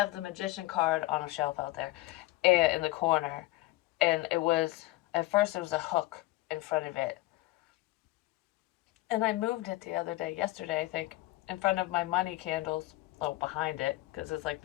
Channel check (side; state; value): right; quieter; 19.2 dB